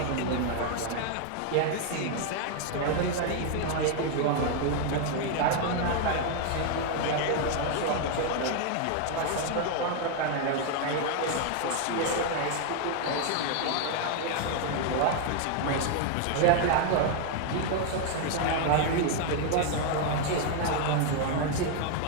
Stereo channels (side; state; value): both; different; correlation 0.00